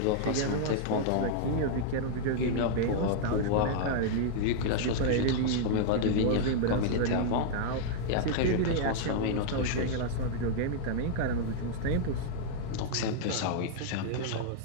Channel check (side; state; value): both; different; correlation -0.01